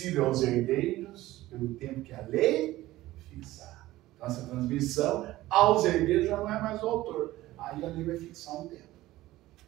aos herdeiros pelo tempo que a lei fixar. Então, essa transmissão aos herdeiros já não é mais o autor. Aí a lei vai fixar um tempo.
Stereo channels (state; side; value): quieter; left; 16.6 dB